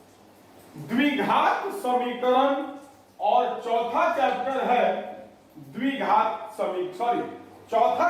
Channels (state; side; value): identical; both; correlation 1.00